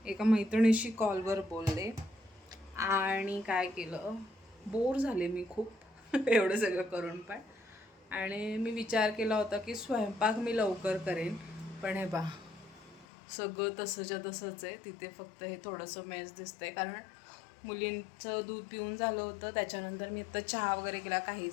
एका मैत्रिणीशी कॉलवर बोलले आणि काय केलं, बोर झाले मी खूप एवढं सगळं करून पण. आणि मी विचार केला होता की स्वयंपाक मी लवकर करेन, पण हे बा सगळं तसंच्या तसंच आहे. तिथे फक्त हे थोडंसं मेस दिसतंय, कारण मुलींचं दूध पिऊन झालं होतं, त्याच्यानंतर मी आता चहा वगैरे केला,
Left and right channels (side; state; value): right; drops out; at 13.1 s